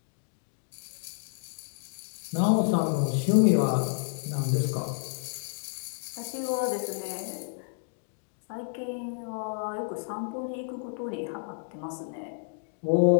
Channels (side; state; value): right; silent; digital silence